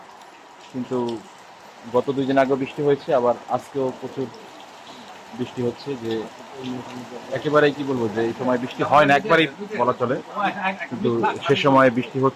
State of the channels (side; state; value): both; identical; correlation 1.00